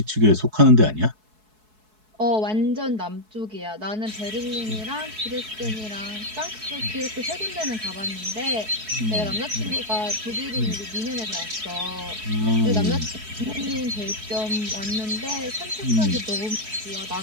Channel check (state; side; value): late; left; 4.7 ms